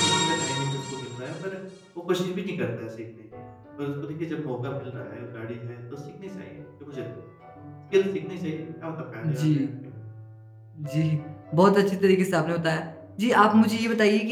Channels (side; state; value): both; identical; correlation 1.00